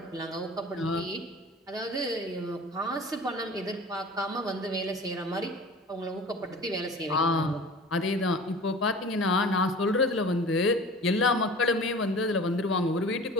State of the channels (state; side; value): normal; both; correlation 0.40